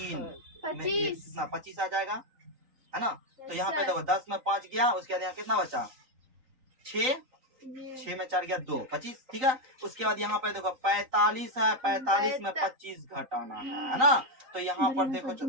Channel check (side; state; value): left; late; 3.9 ms